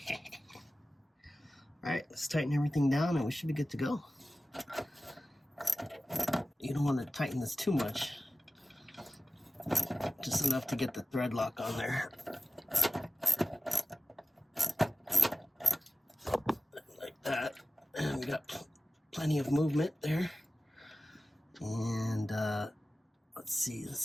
Alright, let's tighten everything down and we should be good to go. You don't want to tighten this too much. Just enough to get the thread lock on there. Like that. And we got plenty of movement there. And let's see,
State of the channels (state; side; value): normal; both; correlation 0.96